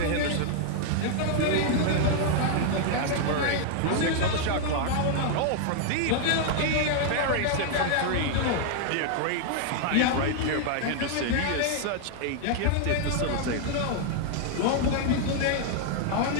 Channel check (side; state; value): both; different; correlation 0.00